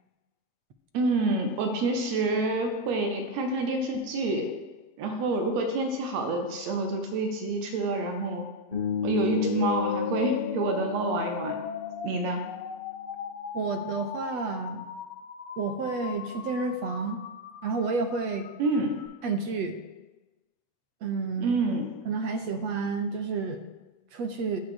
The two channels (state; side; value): late; left; 8.2 ms